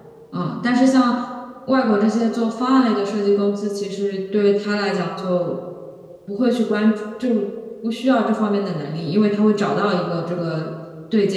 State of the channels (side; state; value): both; identical; correlation 1.00